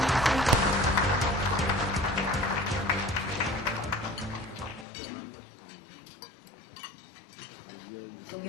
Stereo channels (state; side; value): drops out; right; at 4.9 s